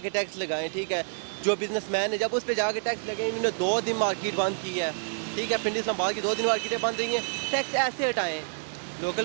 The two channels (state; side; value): silent; left; digital silence